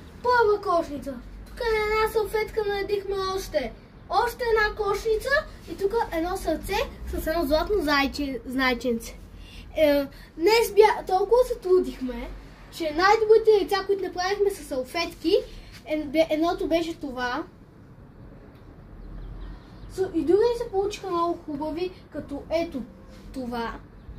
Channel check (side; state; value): both; identical; correlation 1.00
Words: Първа кошница. Тук на една салфетка наредихме още една кошница и тук едно сърце с едно златно зайченце. Днес толкова се трудихме, че най-добрите яйца, които направихме с салфетки, едното беше това. И други се получиха много хубави, като ето това.